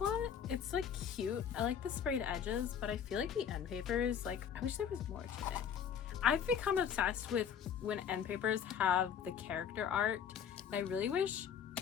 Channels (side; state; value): right; quieter; 8.1 dB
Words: It's like cute. I like the sprayed edges, but I feel like the end papers, like, I wish there was more to it. I've become obsessed with when end papers have the character art, and I really wish